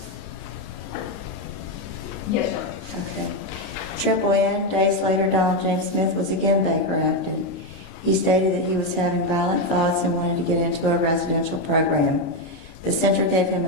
Yes, sir. Okay. Triple N, days later, Donald James Smith was again Baker acted. He stated that he was having violent thoughts and wanted to get into a residential program. The center gave him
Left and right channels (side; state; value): right; late; 29 ms